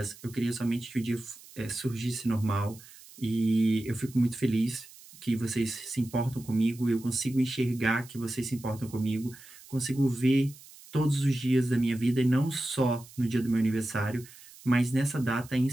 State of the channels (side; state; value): right; noise; hiss, 21 dB below the sound